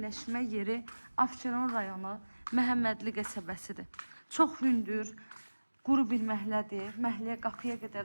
yeri Abşeron rayonu Məhəmmədli qəsəbəsidir. Çox hündür, quru bir məhəllədir. Məhəlləyə qapıya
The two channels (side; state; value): both; inverted; correlation -1.00